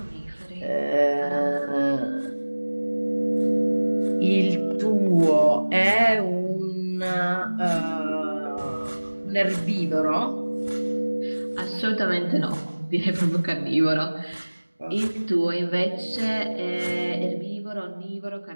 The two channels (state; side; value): inverted; both; correlation -1.00